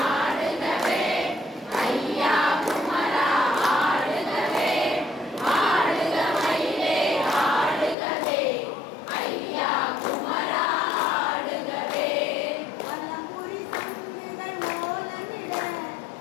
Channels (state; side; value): drops out; right; at 8.0 s